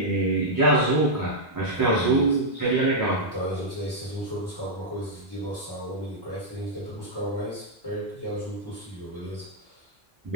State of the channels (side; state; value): both; normal; correlation -0.06